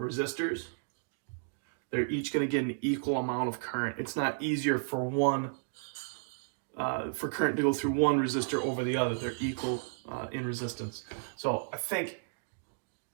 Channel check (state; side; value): silent; left; digital silence